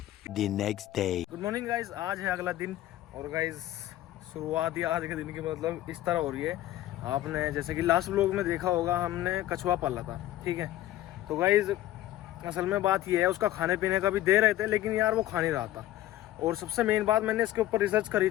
The next day. Good morning guys, आज है अगला दिन, और गाइज शुरुआत ही आज के दिन की मतलब इस तरह हो रही है। आपने जैसे कि लास्ट व्लॉग में देखा होगा, हमने कछुआ पाला था, ठीक है। तो गाइज असल में बात ये है, उसका खाने पीने का भी दे रहे थे, लेकिन यार वो खा नहीं रहा था। और सबसे मेन बात, मैंने इसके ऊपर रिसर्च करी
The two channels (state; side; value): quieter; right; 14.3 dB